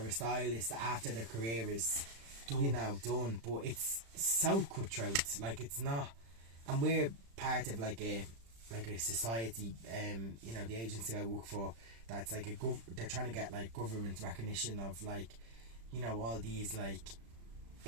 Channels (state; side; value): late; left; 35 ms